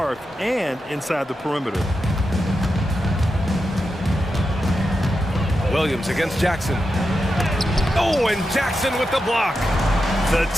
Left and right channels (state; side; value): normal; both; correlation 0.88